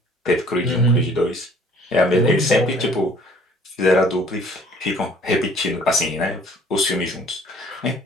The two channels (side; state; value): both; normal; correlation 0.55